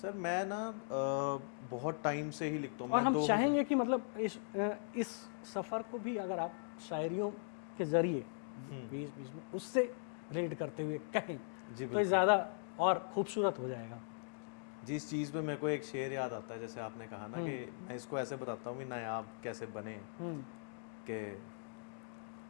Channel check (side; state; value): right; silent; digital silence